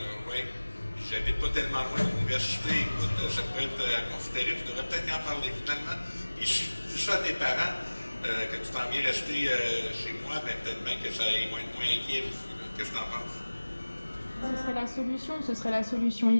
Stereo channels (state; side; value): inverted; both; correlation -1.00